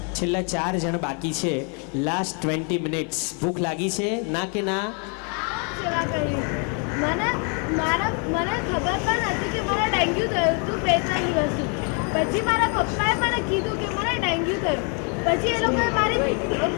છેલ્લા 4 જણ બાકી છે. Last 20 minutes. ભૂખ લાગી છે ના કે ના? સેવા કરી. મને ખબર પણ હતી કે મને ડેન્ગ્યુ થયું હતું 2-3 દિવસથી. પછી મારા પપ્પાએ મને કીધું કે મને ડેન્ગ્યુ થયું. પછી એ લોકોએ મારી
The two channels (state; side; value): quieter; right; 38.2 dB